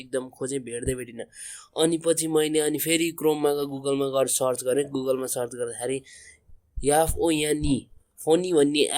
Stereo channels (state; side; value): identical; both; correlation 1.00